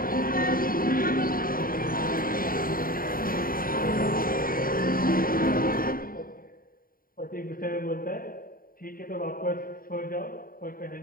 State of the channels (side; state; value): right; late; 0.41 ms